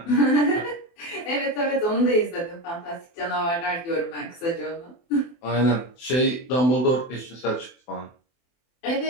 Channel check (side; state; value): right; late; 24 ms